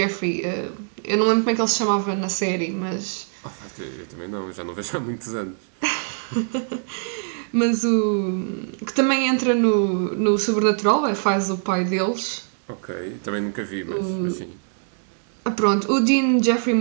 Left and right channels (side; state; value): left; silent; digital silence